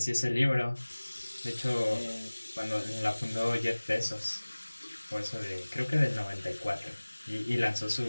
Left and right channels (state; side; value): inverted; both; correlation -1.00